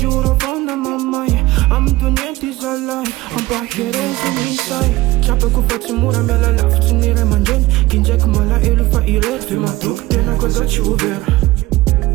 fona mamai Am dunyenti zalai Am pahiren sumisai Chapa ku fati mura mela laf Chinire manjen Kinjek mala ilu fa irer Fima tuk tena koza chi uver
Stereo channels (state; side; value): quieter; left; 18.6 dB